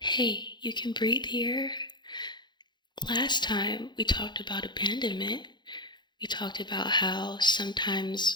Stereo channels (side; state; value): right; late; 0.21 ms